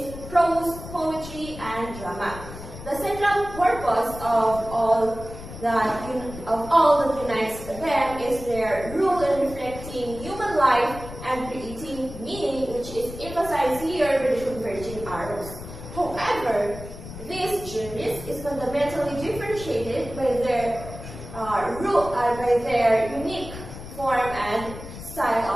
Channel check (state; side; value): noise; left; rumble, 12 dB below the sound